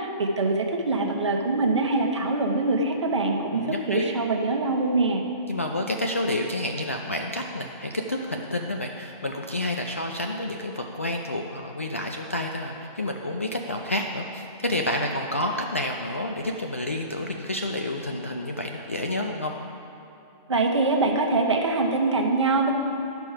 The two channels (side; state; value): both; inverted; correlation -0.41